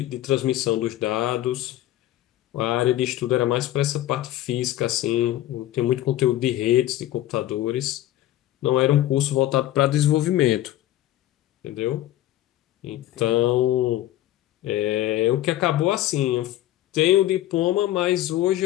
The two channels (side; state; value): right; quieter; 14.1 dB